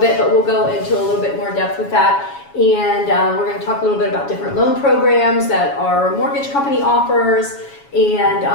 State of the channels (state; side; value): late; right; 7.2 ms